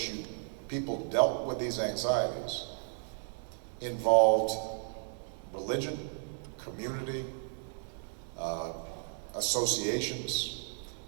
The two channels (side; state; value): left; silent; digital silence